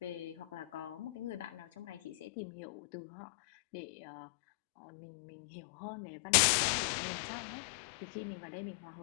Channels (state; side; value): drops out; right; at 2.2 s